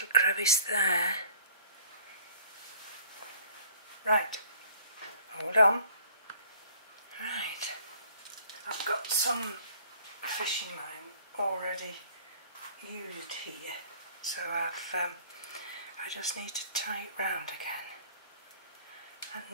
crevice there. Right, hold on. Right, I've got some fishing line already used here, so I just need to tie it round again.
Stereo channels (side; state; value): both; inverted; correlation -0.53